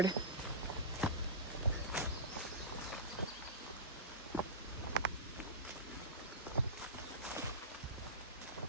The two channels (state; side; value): normal; both; correlation -0.17